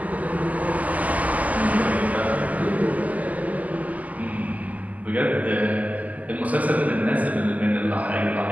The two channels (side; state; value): left; late; 0.076 ms